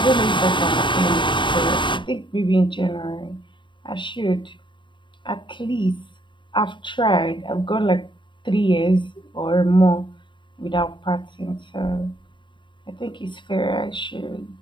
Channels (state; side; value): late; right; 0.23 ms